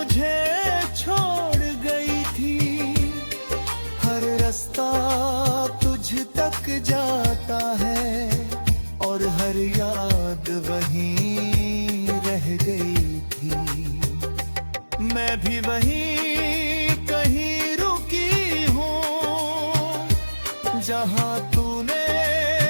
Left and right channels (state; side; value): inverted; both; correlation -1.00